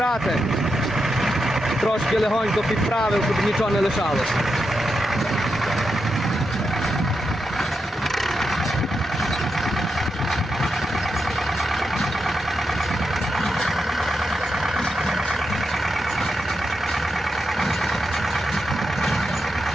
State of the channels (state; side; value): normal; both; correlation 0.86